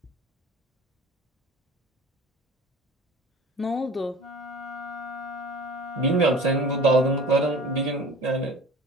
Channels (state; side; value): normal; both; correlation 0.42